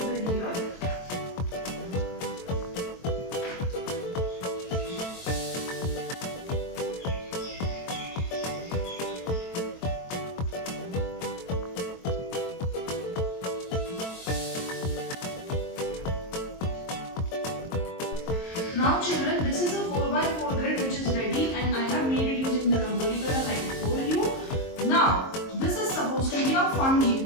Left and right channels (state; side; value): late; right; 22 ms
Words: here. Now children, this is a 4x4 grid which is ready and I have made it using the rangoli color like I told you. Now, this is supposed to be a fun game.